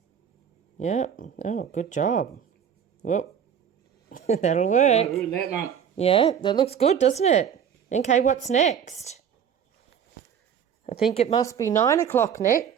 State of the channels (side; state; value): left; quieter; 8.2 dB